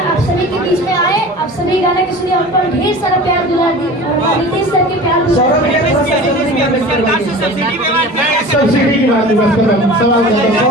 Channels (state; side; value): normal; both; correlation 0.37